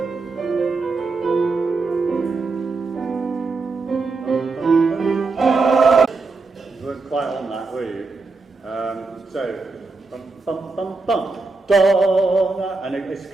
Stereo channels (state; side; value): quieter; left; 3.9 dB